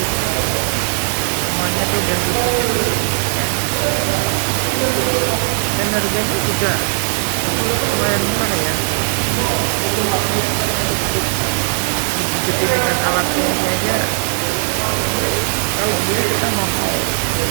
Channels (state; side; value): silent; left; digital silence